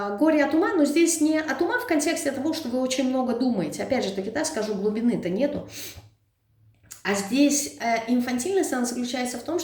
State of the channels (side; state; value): both; identical; correlation 1.00